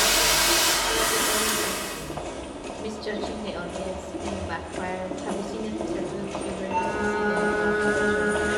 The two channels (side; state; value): both; identical; correlation 1.00